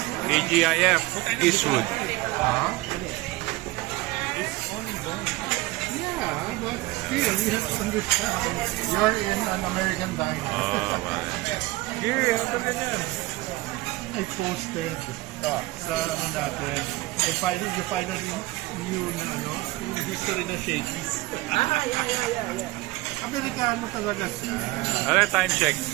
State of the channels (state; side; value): quieter; left; 20.3 dB